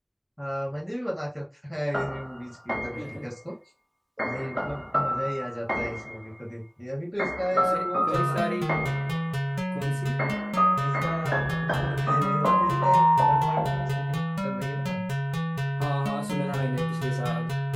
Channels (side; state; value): both; identical; correlation 1.00